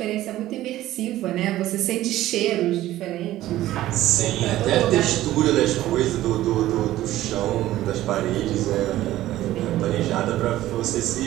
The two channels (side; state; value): left; quieter; 14.8 dB